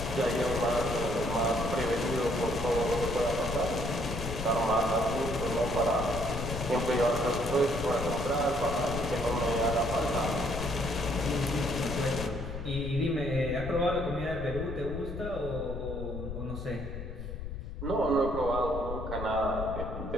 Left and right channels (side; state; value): left; noise; rumble, 7 dB below the sound